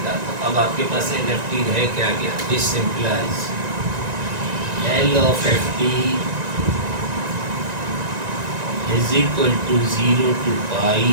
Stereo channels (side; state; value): left; late; 1.9 ms